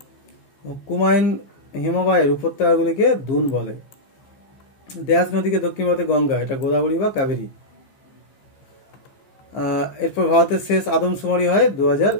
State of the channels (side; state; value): right; late; 15 ms